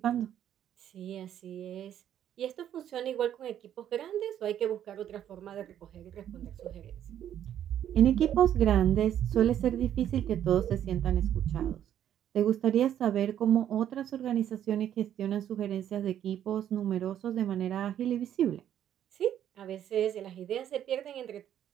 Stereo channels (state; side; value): quieter; left; 10.5 dB